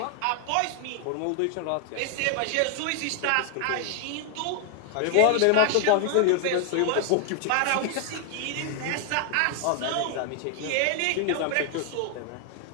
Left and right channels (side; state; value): both; different; correlation 0.00